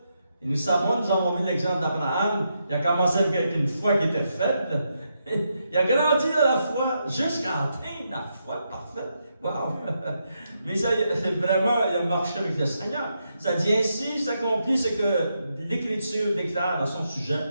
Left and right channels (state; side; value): inverted; both; correlation -0.82